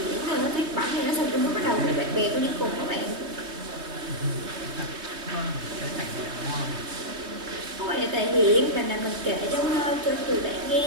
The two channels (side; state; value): left; late; 3.2 ms